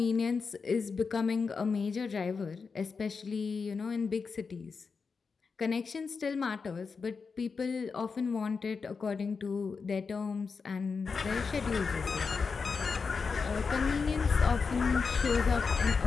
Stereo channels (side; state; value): right; quieter; 5.1 dB